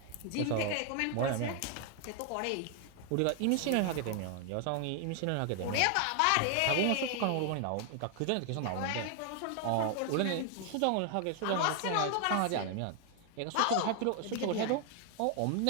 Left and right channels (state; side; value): different; both; correlation 0.00